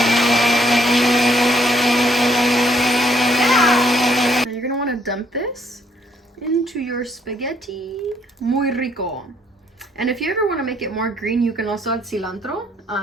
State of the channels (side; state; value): both; normal; correlation 0.68